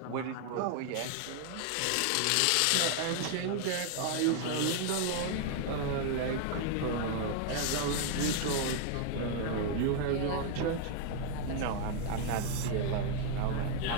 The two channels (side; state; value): both; different; correlation 0.00